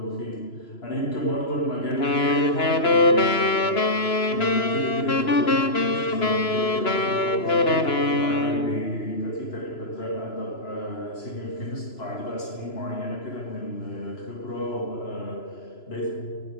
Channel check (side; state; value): right; late; 3.0 ms